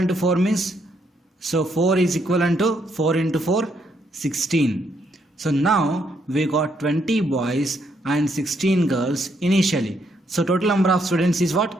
to 4 means, so 4 is equivalent to 4 into 4, 16. So now we got 20 boys and 16 girls initially. So total number of students is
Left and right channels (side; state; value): both; normal; correlation 0.74